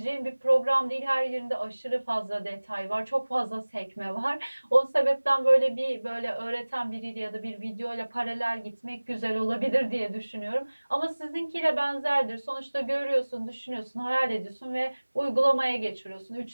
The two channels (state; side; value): inverted; both; correlation -1.00